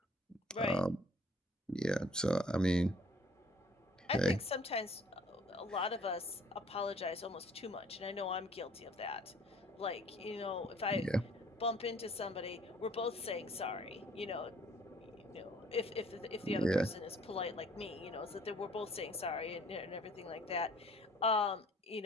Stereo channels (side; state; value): both; normal; correlation 0.56